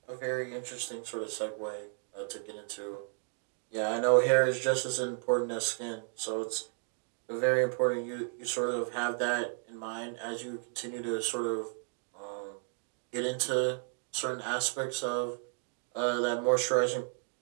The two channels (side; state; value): left; silent; 56 dB below the other